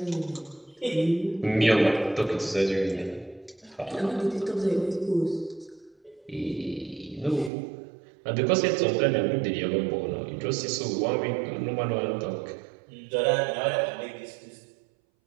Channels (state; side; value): drops out; left; at 7.5 s